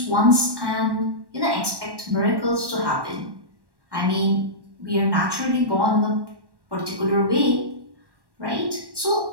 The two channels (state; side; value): late; left; 1.1 ms